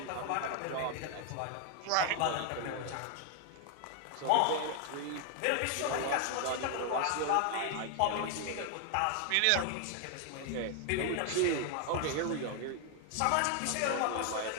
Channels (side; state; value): both; different; correlation 0.00